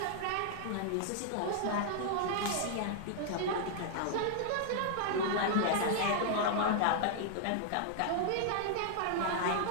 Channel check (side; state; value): both; different; correlation -0.01